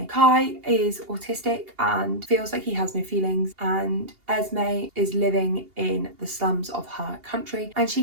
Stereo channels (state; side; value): late; left; 2.8 ms